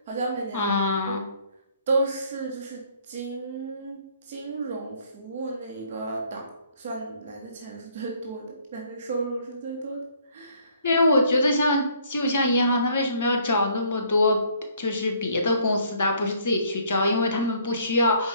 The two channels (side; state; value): both; inverted; correlation -0.62